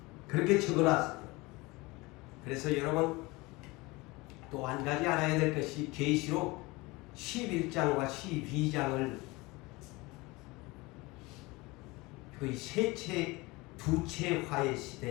그렇게 적어놨어요. 그래서 여러분 또 한 가지 알아야 될 것이 계시록 11장과 12장을 거의 두채 화의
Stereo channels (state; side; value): quieter; right; 23.2 dB